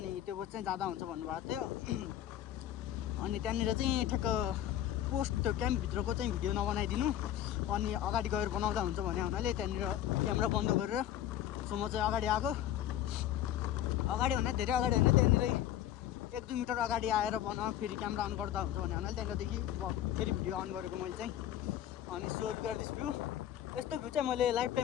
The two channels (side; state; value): right; quieter; 11.8 dB